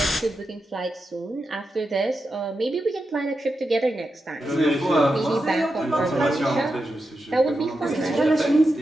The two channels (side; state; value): both; normal; correlation 0.88